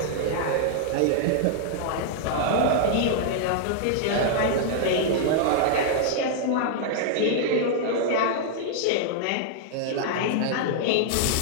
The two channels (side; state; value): both; different; correlation -0.01